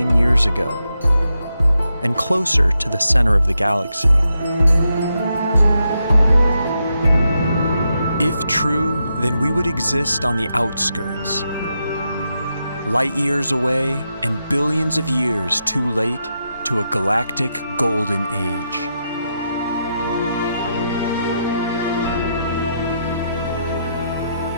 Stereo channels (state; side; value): inverted; both; correlation -0.84